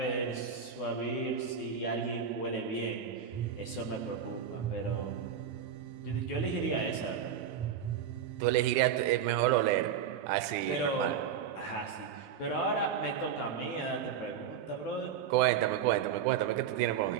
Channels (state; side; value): quieter; left; 7.9 dB